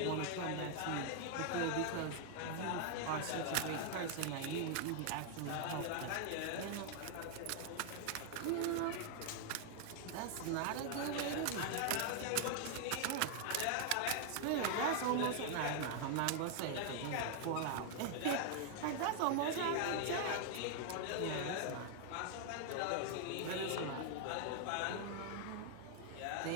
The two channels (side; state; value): both; different; correlation 0.00